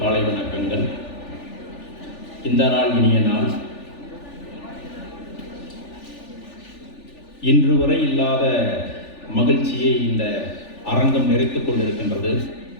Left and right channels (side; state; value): right; late; 3.4 ms